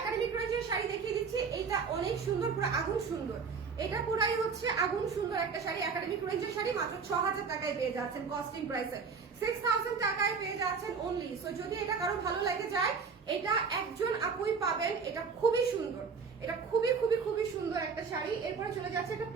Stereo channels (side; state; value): left; quieter; 5.4 dB